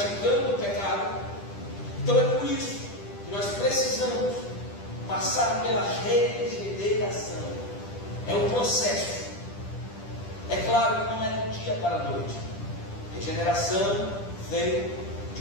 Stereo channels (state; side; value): late; right; 10 ms